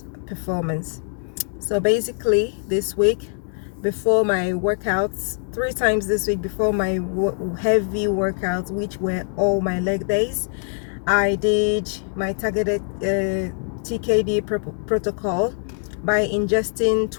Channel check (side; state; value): right; silent; 64 dB below the other